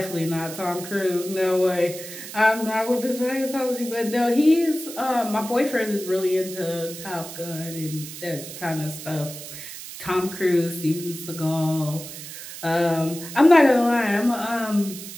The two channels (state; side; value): noise; right; hiss, 11 dB below the sound